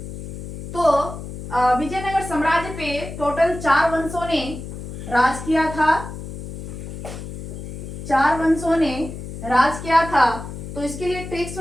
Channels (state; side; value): noise; left; hum, 9 dB below the sound